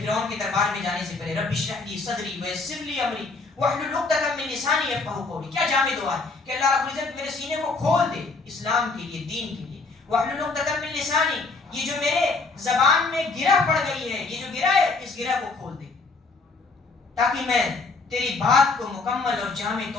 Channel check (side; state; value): right; quieter; 3.9 dB